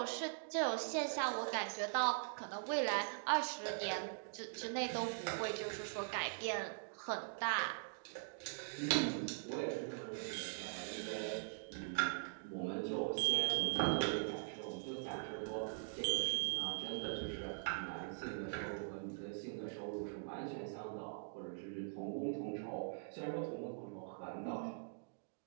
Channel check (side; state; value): left; silent; digital silence